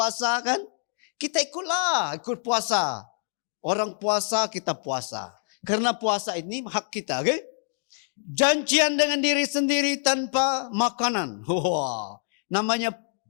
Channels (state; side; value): silent; right; digital silence